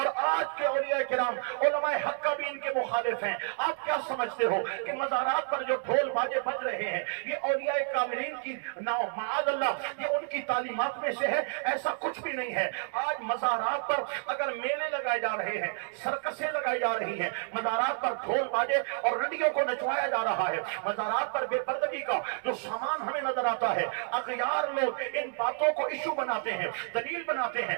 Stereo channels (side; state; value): left; silent; 58 dB below the other